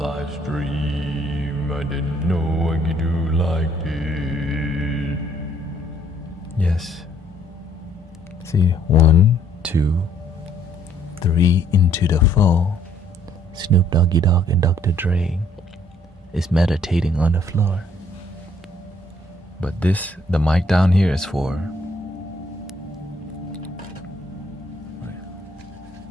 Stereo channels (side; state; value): both; normal; correlation 0.65